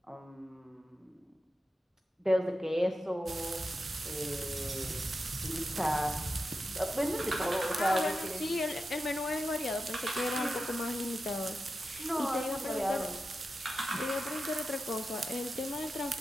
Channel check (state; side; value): normal; both; correlation 0.90